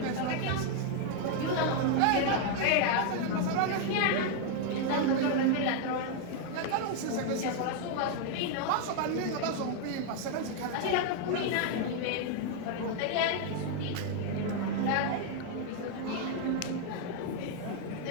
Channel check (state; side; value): different; both; correlation 0.00